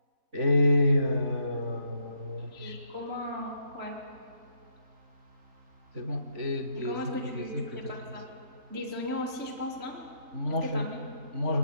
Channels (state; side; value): late; left; 3.1 ms